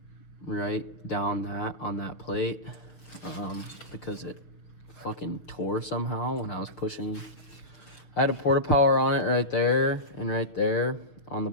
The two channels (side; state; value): right; late; 5.9 ms